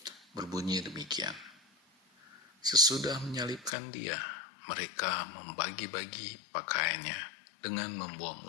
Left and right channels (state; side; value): drops out; right; at 3.7 s